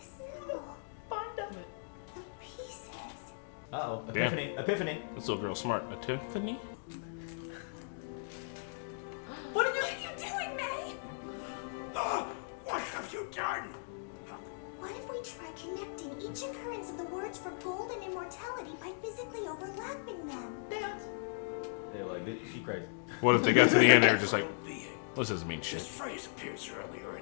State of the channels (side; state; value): right; silent; digital silence